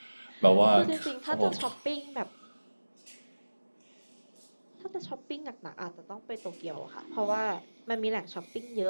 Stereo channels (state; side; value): inverted; both; correlation -1.00